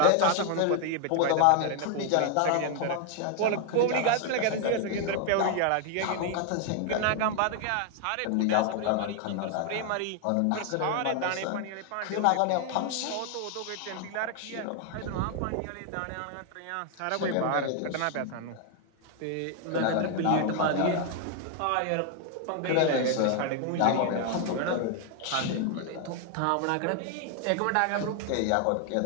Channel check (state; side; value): different; both; correlation 0.00